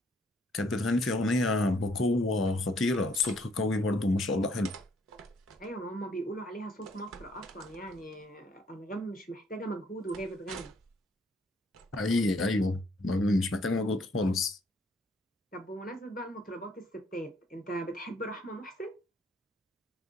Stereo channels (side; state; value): both; normal; correlation 0.66